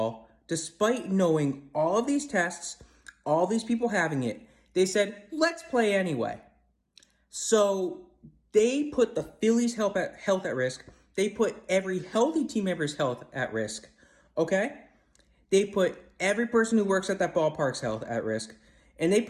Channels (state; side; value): identical; both; correlation 1.00